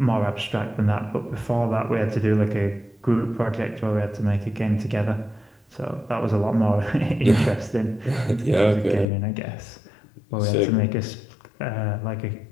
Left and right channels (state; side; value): drops out; right; at 9.1 s